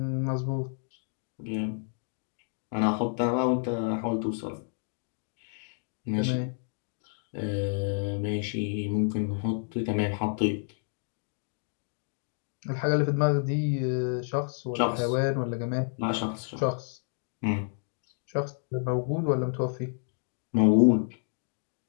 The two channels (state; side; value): silent; right; 58 dB below the other